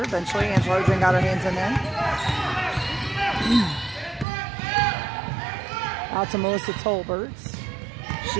Eventually, Angela Odrin got her hands in there. Out to Melissa Tolberts.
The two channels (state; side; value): drops out; left; at 4.2 s